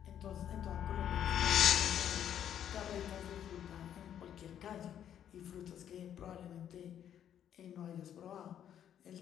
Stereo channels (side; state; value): right; quieter; 9.9 dB